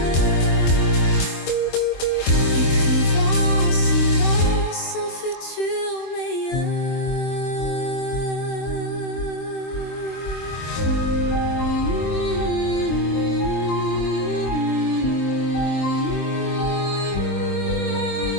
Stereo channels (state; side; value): late; right; 23 ms